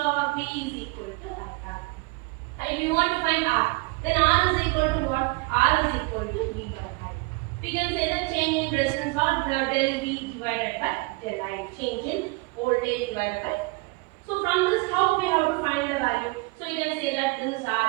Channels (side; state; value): left; quieter; 25.4 dB